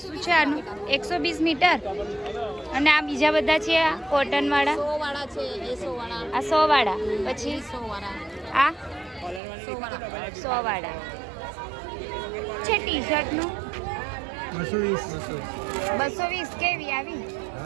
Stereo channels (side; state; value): left; drops out; at 9.4 s